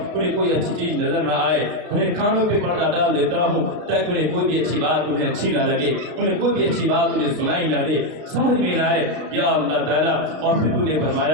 انہیں کوئی اچھی چیز نظر نہ آئے، انہیں کانوں پہ پردہ ڈال دیتا ہوں تاکہ انہیں کوئی بھی اچھی بات انہیں اچھی نہ لگے، انہیں کوئی بھی اچھی بات انہیں سنائی نہ دے، سمجھ میں نہ آئے یا اللہ تعالیٰ۔ اور پھر تو نے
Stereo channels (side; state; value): left; late; 32 ms